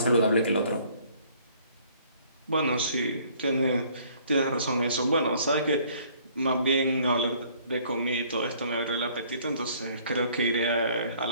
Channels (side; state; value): both; inverted; correlation -0.59